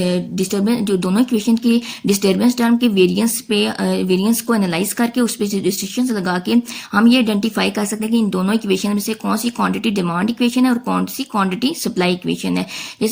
डिस्टर्बेंस, जो दोनों इक्वेशन की डिस्टर्बेंस टर्म के वेरिएंस को एनालाइज करके उस पर रिस्ट्रिक्शंस लगा के हम ये आइडेंटिफाई कर सकते हैं कि इन दोनों इक्वेशन में से कौन सी क्वांटिटी डिमांड इक्वेशन है और कौन सी क्वांटिटी सप्लाई इक्वेशन है।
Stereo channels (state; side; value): identical; both; correlation 1.00